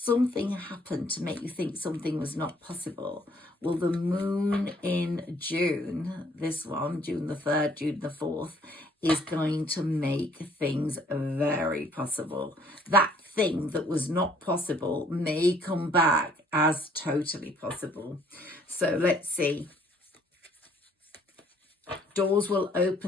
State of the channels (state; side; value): normal; both; correlation 0.61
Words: happened to make you think something was not possible. Well, the moon in June, this one, June the 3rd, June the 4th, is going to make things very possible. That thing that was not possible may come back as totally possible. So let's see. Doors will